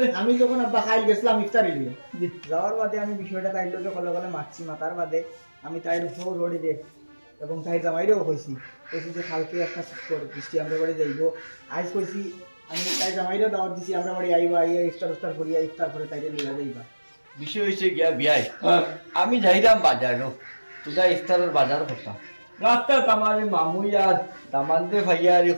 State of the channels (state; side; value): inverted; both; correlation -1.00